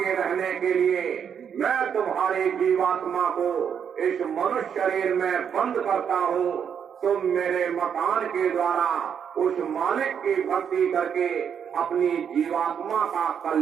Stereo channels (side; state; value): left; quieter; 7.8 dB